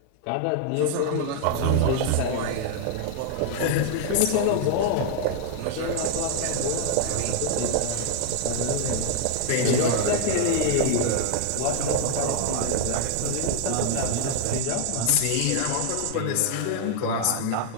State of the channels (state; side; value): different; both; correlation -0.01